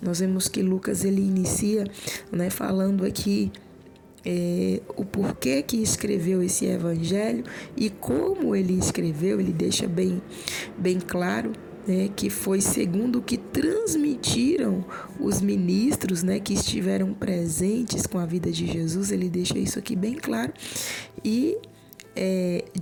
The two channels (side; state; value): both; identical; correlation 1.00